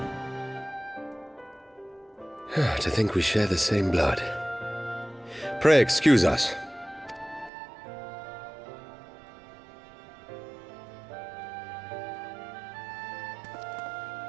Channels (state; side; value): drops out; left; at 7.5 s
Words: To think we share the same blood. Pray excuse us.